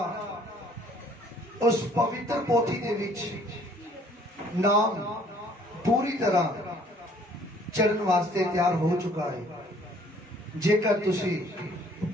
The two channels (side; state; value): both; normal; correlation 0.58